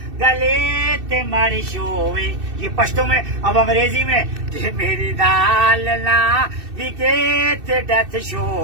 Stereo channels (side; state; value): left; late; 2.6 ms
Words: گلے تے ماری شوے یہ پشتو میں اب انگریزی میں جی میری دال نہ وکے تے ڈیتھ